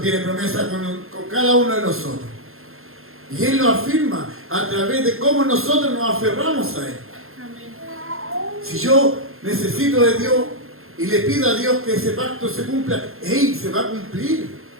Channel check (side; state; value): left; late; 0.61 ms